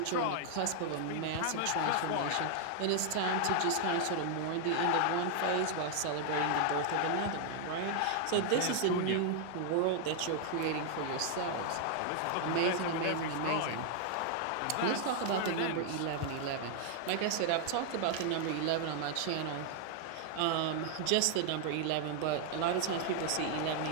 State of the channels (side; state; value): both; different; correlation 0.00